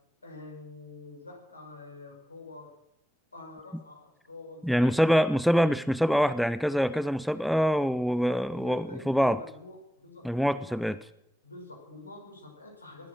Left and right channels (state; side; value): normal; both; correlation 0.95